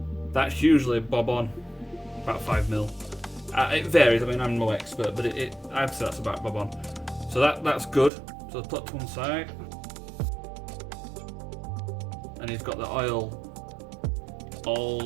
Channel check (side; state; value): left; drops out; at 8.1 s